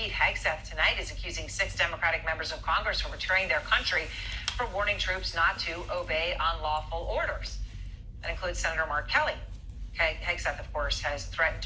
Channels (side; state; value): both; identical; correlation 1.00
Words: Hegseth tonight is accusing 6 Democratic members of Congress for betraying their country for warning troops not to obey unlawful orders. That includes Senator Mark Kelly. Hegseth, of course, has